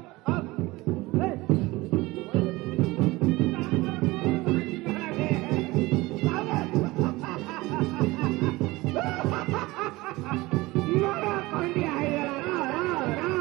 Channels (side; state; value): left; quieter; 20.8 dB